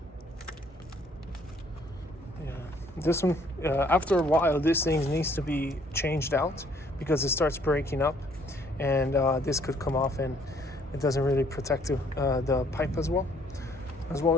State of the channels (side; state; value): both; normal; correlation 0.63